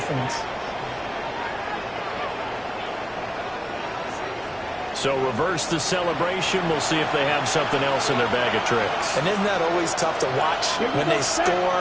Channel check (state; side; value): identical; both; correlation 1.00